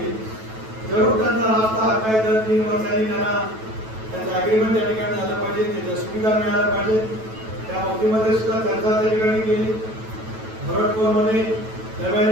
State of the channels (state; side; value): late; left; 9.1 ms